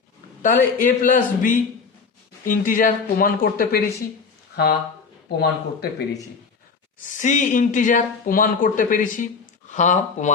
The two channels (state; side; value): quieter; right; 5.2 dB